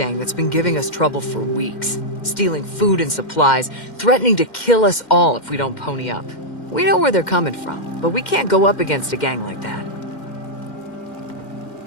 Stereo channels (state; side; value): late; right; 2.1 ms